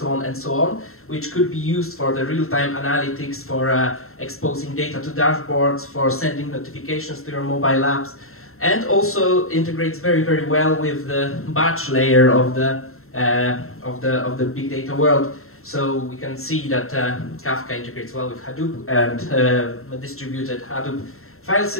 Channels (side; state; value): right; late; 0.62 ms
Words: on, which could be used for the real-time analytics, for exposing data to dashboards, for sending notifications to your mobile apps, and also integrates very, very well with the batch layer of the big data world. So we can see that Kafka integrates well with Hadoop and a distributed Hadoop file